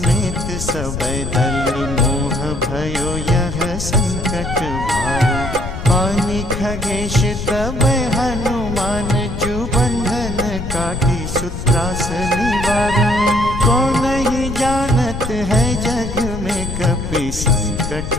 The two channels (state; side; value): noise; left; rumble, 6 dB below the sound